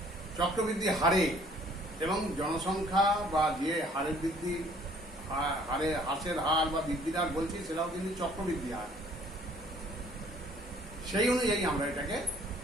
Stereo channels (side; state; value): both; normal; correlation 0.58